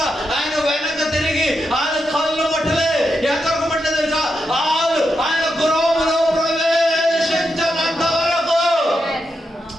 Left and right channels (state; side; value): normal; both; correlation 0.85